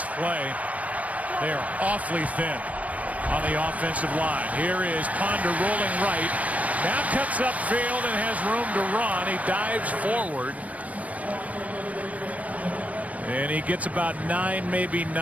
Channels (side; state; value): left; late; 0.068 ms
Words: play. They are awfully thin on the offensive line. Here is Ponder rolling right. Now cuts upfield and has room to run. He dives forward. And he gets about 9, maybe